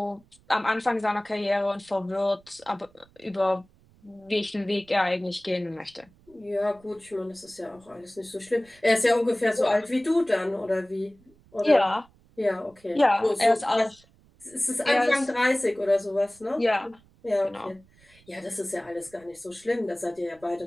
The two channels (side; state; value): right; noise; rumble, 29 dB below the sound